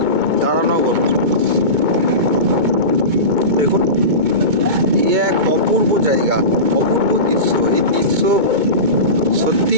তারানগর। দেখুন, এক অপূর্ব জায়গা, অপূর্ব দৃশ্য। এই দৃশ্য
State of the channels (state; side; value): late; left; 2.2 ms